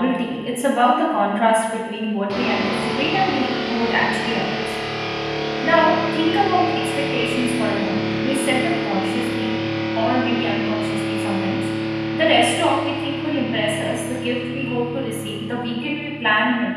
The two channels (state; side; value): identical; both; correlation 1.00